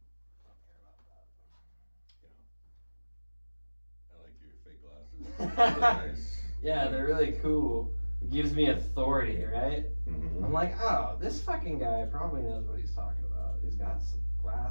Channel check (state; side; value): inverted; both; correlation -1.00